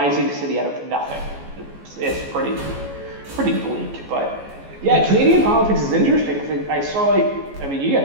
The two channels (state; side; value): late; left; 14 ms